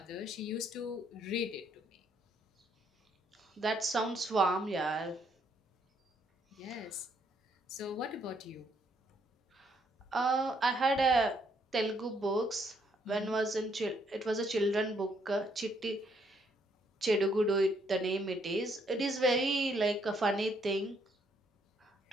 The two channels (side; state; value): both; normal; correlation 0.71